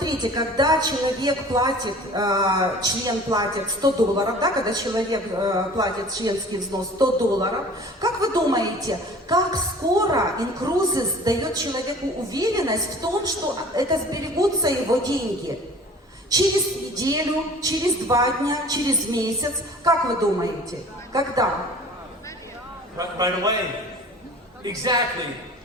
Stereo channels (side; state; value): both; normal; correlation 0.46